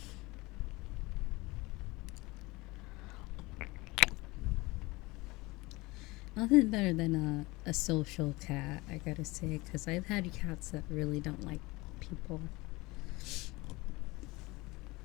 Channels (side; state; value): right; quieter; 22.6 dB